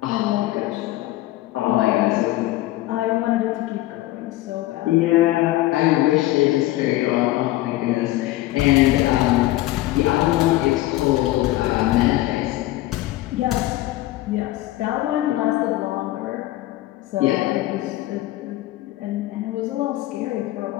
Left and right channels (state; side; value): quieter; right; 16.7 dB